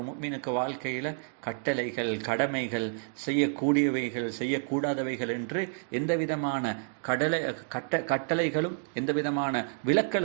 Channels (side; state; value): left; silent; digital silence